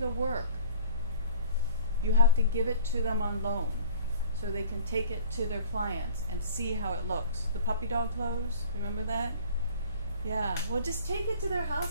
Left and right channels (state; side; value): inverted; both; correlation -0.49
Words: work. You have to give it to them on loan so they can take it to their clients and see how it looks. The puppy dog clothes, remember that? Yeah, well just take it to their